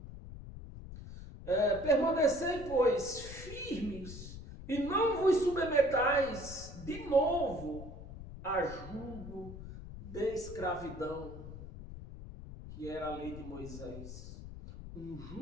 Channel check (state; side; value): noise; left; rumble, 12 dB below the sound